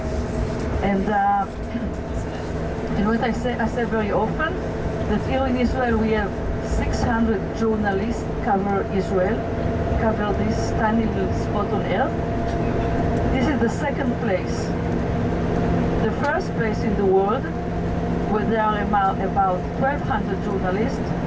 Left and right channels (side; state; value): both; identical; correlation 1.00